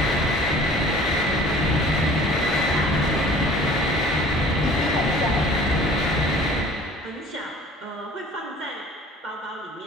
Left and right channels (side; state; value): both; normal; correlation 0.48